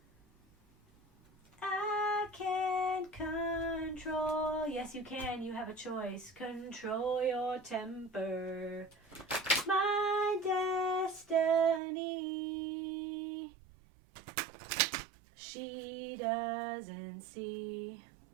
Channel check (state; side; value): drops out; left; at 11.8 s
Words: I can't control. Yes, you can. You have a choice. Control your temper. My destiny. She doesn't see.